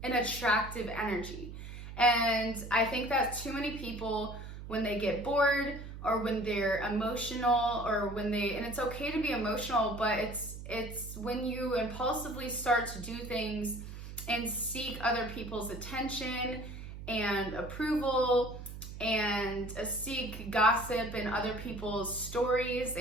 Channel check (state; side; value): noise; right; hum, 11 dB below the sound